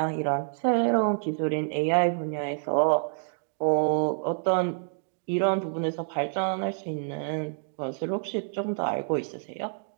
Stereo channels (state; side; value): silent; left; digital silence